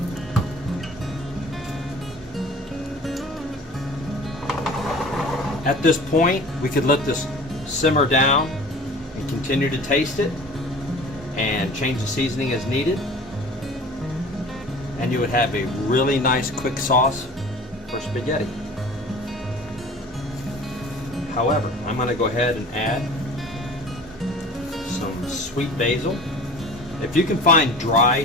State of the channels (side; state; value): both; normal; correlation 0.42